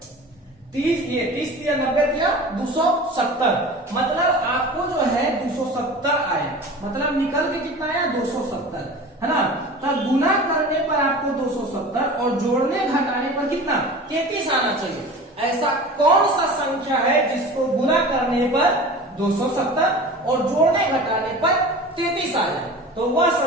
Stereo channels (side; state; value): both; normal; correlation 0.37